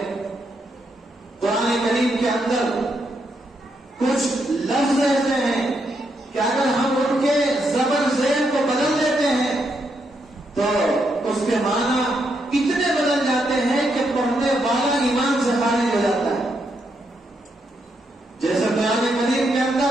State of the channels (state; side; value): normal; both; correlation 0.79